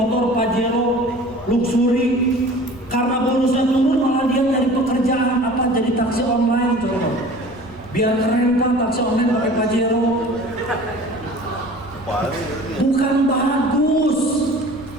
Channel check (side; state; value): left; noise; rumble, 24 dB below the sound